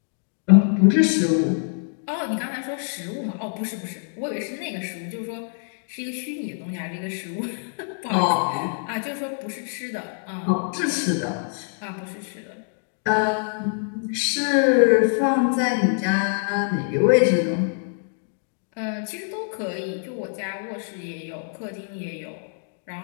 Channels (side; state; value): right; silent; digital silence